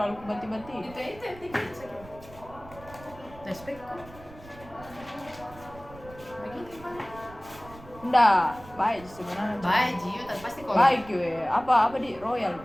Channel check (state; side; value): noise; right; rumble, 19 dB below the sound